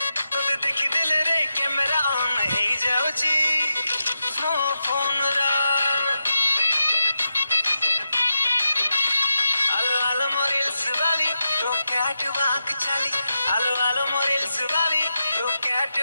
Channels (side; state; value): both; inverted; correlation -0.87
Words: ରେ କ୍ୟାମେରା ଅନ୍ ହେଇଯାଉଛି ମୋ ଫୋନର। ଆଲୋ ଆଲୋ ମୋ ରିଲ୍ସ ବାଲି ତୋ କ୍ୟାଟ ୱାକ୍ ଚାଲି, ଆଲୋ ଆଲୋ ମୋ ରିଲ୍ସ ବାଲି ତୋ କ୍ୟାଟ